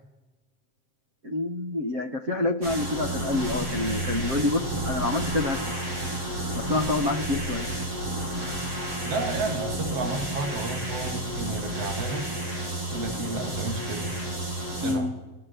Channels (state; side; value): late; left; 7.6 ms